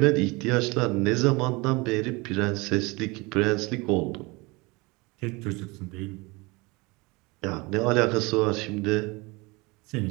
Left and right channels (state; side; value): quieter; left; 25.3 dB